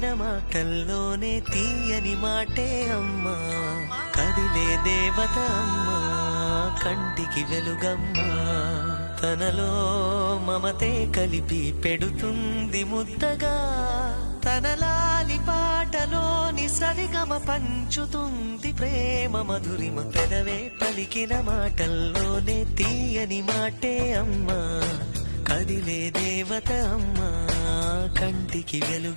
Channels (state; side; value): inverted; both; correlation -1.00